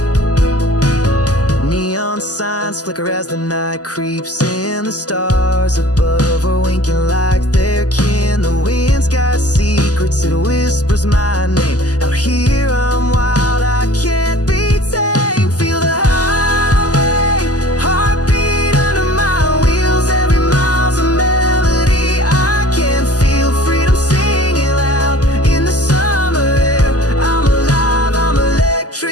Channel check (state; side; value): late; right; 0.67 ms